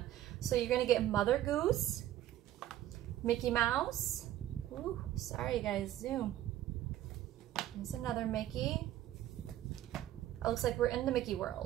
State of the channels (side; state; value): left; quieter; 13.1 dB